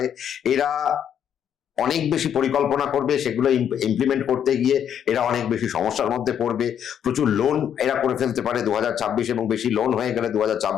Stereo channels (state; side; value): quieter; right; 9.0 dB